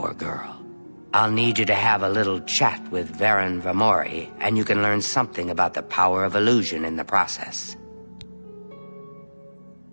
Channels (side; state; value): both; inverted; correlation -1.00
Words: girl. I'll need you to have a little chat with Varen Vamori, and you can learn something about the power of illusion in the process.